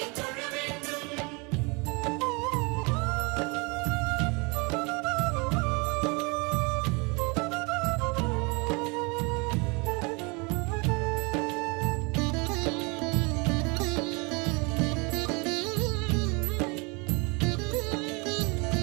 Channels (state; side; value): quieter; left; 29.4 dB